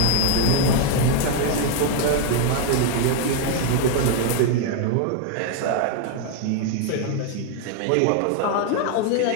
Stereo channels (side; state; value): both; different; correlation 0.01